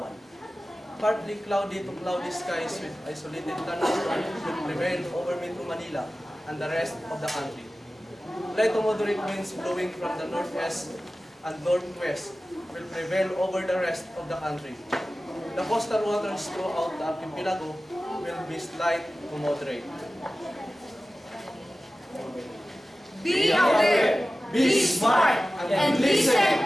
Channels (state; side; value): normal; both; correlation 0.96